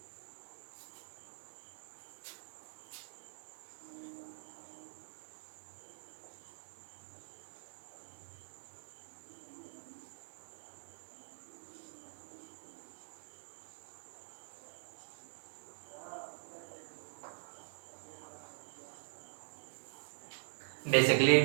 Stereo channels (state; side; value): silent; left; digital silence